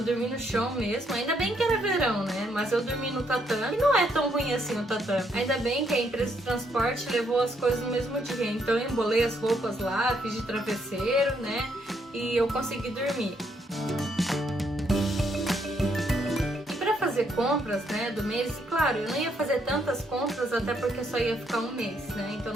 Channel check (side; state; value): both; normal; correlation 0.73